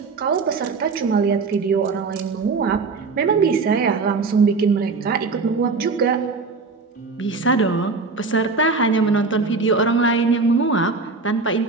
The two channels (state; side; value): quieter; left; 4.2 dB